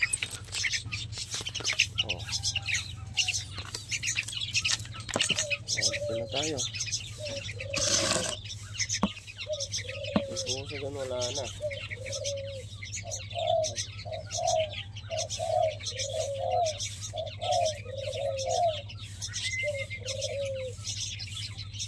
O. Dito na tayo. May pusa dyan, wala na.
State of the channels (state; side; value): identical; both; correlation 1.00